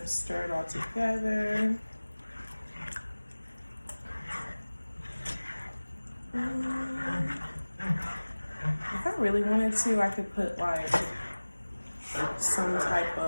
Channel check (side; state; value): both; inverted; correlation -1.00